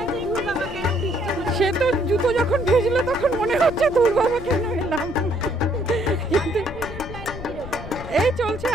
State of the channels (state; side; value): noise; left; rumble, 11 dB below the sound